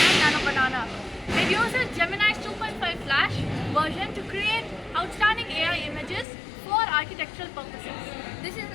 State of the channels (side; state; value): right; drops out; at 6.2 s